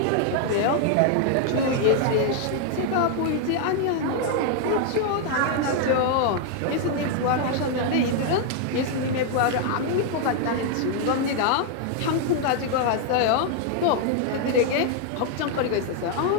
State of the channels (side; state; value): both; different; correlation 0.00